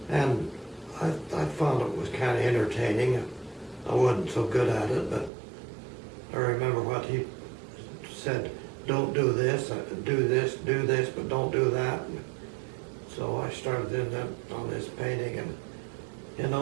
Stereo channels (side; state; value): left; drops out; at 5.3 s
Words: And I found it was kind of entertaining. I wasn't so good at it, but I remember what he said, don't do this, do this, but don't do that. And so I started in that on this painting, and you